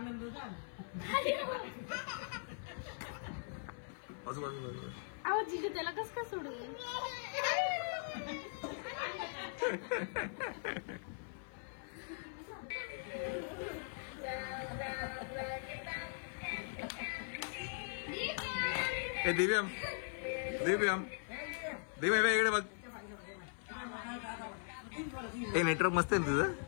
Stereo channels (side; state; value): right; silent; 51 dB below the other